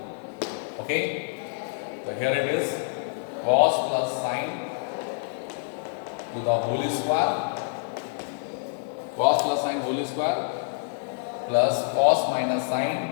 Okay, so here it is, cos plus sin to the whole square, cos plus sin whole square plus cos minus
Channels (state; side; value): silent; right; digital silence